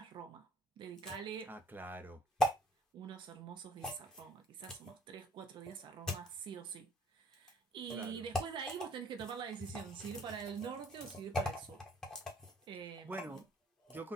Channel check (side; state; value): both; normal; correlation 0.58